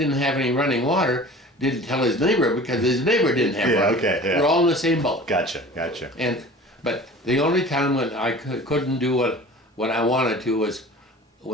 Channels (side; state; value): both; normal; correlation 0.41